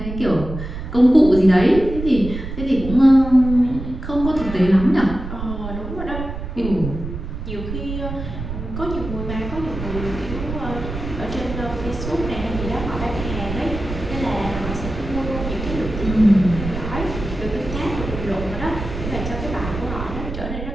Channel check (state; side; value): noise; right; rumble, 7 dB below the sound